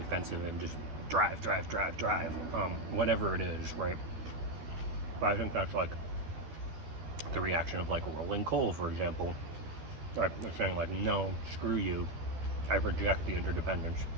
and just drive, drive, drive, drive, whatever it is, right? But I think that's like the reaction of like Rolling Coal, for example. Right? They're saying like, no, screw you, I reject the interdependence.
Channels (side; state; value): left; late; 12 ms